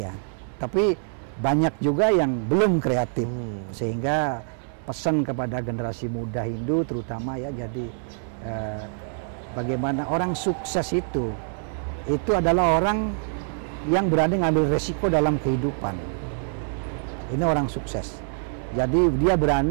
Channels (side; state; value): left; silent; 62 dB below the other